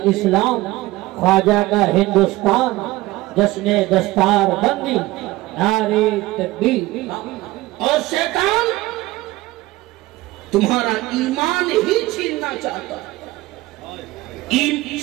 اسلام، خواجہ کا ہندوستان، جشن دستار بندی، نعرے تکبیر۔ اور شیطان تمہارا ایمان ہی چھیننا چاہتا ہے۔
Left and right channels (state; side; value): quieter; left; 18.8 dB